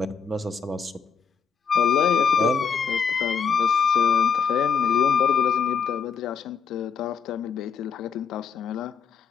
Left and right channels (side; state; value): right; quieter; 6.4 dB